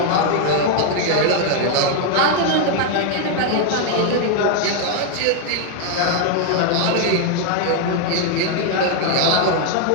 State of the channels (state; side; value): different; both; correlation 0.00